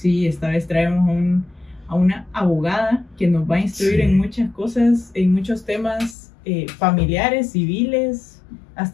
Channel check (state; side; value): drops out; right; at 6.2 s